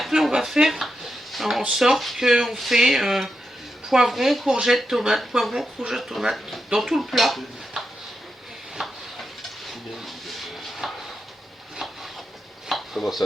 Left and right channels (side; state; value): both; normal; correlation 0.86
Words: on va faire en sorte qu'on fait poivron, courgette, tomate, poivron, courgette, tomate dans tout le plat. Comment